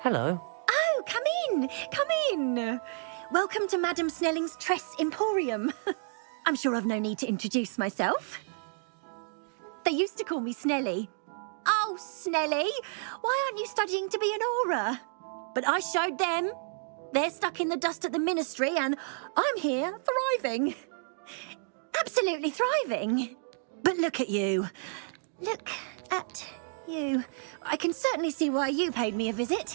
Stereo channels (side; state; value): left; silent; digital silence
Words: Oh, come in. Come in. Welcome to Madame Snelling's Tress Emporium. I'm sure I've no need to introduce myself. They used to call me Snelly. Oh, Snelly, why aren't you studying to be an aura? But I showed them. They're stuck in the dust at the ministry and I'm here thriving. Absolutely thriving. But look at you. Look at you. I can certainly see why you paid me a